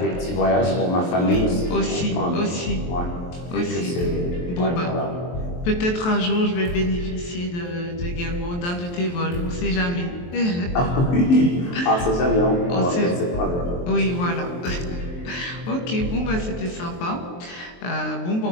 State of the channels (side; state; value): right; late; 23 ms